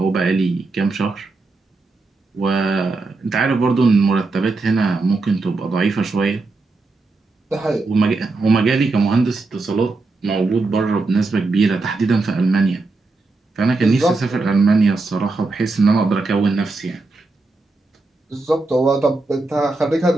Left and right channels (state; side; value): quieter; left; 3.5 dB